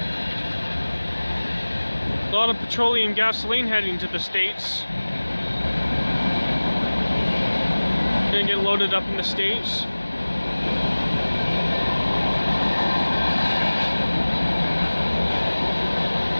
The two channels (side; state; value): both; inverted; correlation -1.00